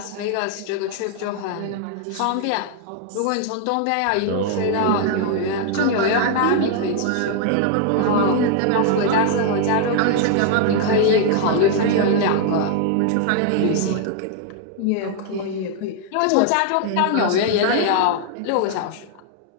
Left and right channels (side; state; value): both; different; correlation 0.00